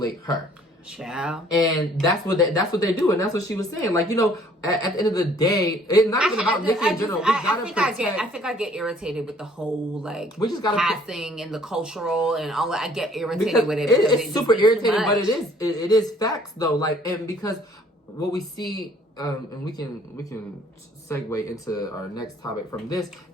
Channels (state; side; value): normal; both; correlation 0.58